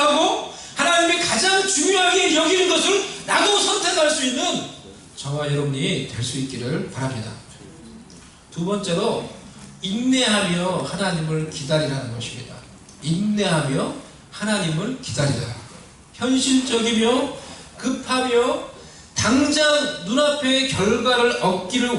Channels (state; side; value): identical; both; correlation 1.00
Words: 하나님이 가장 중요하게 여기는 것을 나도 선택할 수 있는 저와 여러분이 될 수 있기를 바랍니다. 두 번째로 인내하며 하나님을 기다리라는 것입니다. 인내하며 하나님을 기다리라. 현실적이며 급하며 당장 눈앞의 결과를